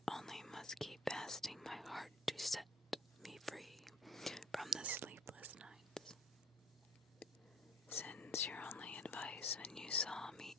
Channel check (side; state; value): both; normal; correlation 0.45